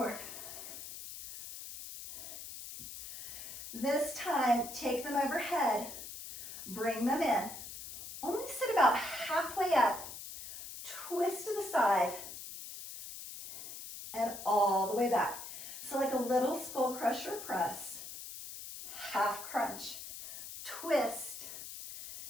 This time, take them overhead, bring them in. Only sit about halfway up, twist to the side, and all the way back. So like a little skull crusher press, half crunch, twist,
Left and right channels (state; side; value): noise; left; hiss, 11 dB below the sound